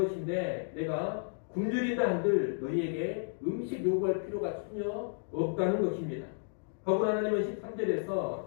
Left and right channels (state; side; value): silent; right; digital silence